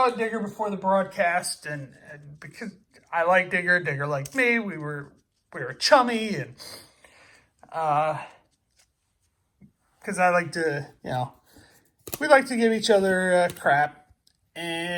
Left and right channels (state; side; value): identical; both; correlation 1.00